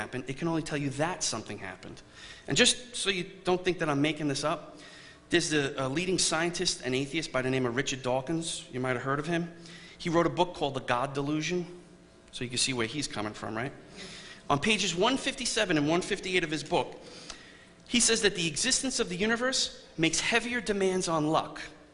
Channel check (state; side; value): identical; both; correlation 1.00